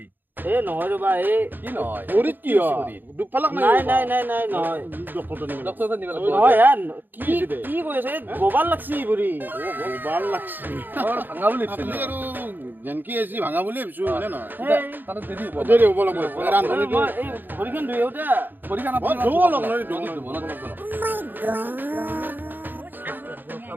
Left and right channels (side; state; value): left; late; 0.091 ms